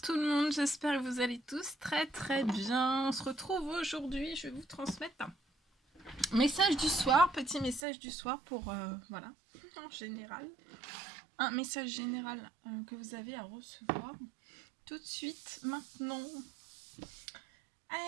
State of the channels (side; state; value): left; drops out; at 7.8 s